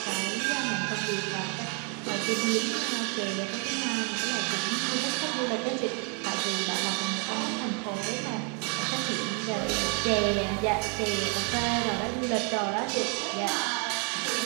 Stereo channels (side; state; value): left; quieter; 33.9 dB